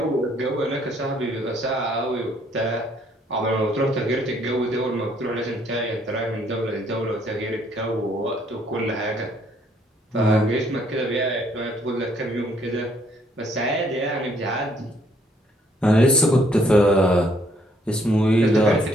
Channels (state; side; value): normal; both; correlation 0.67